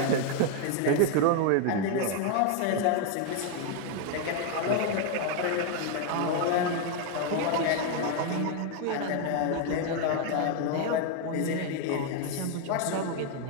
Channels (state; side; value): different; both; correlation 0.00